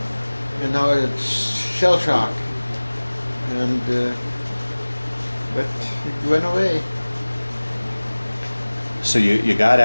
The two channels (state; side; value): inverted; both; correlation -1.00